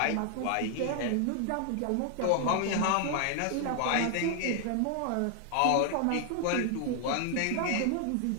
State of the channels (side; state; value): both; different; correlation 0.00